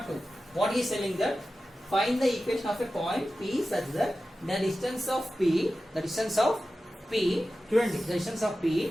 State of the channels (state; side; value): normal; both; correlation 0.94